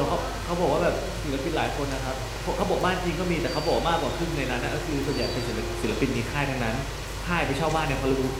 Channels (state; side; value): identical; both; correlation 1.00